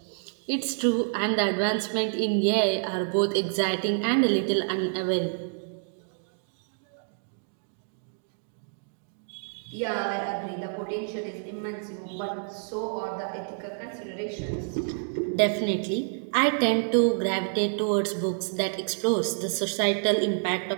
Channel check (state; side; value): silent; left; digital silence